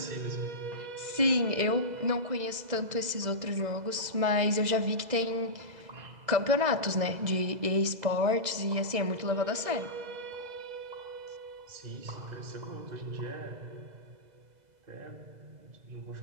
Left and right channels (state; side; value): late; left; 2.0 ms